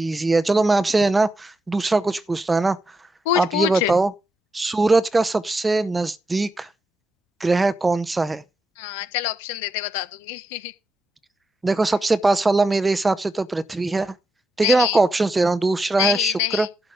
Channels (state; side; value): normal; both; correlation 0.84